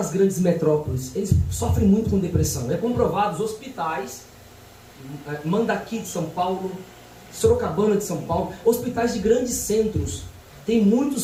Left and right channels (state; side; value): identical; both; correlation 1.00